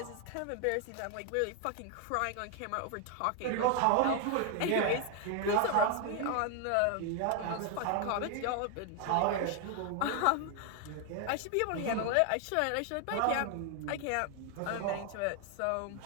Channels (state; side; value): different; both; correlation 0.01